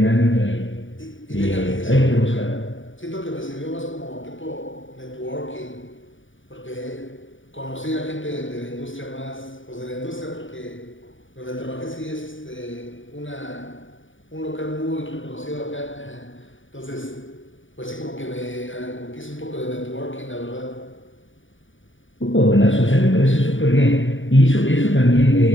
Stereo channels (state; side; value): late; right; 0.57 ms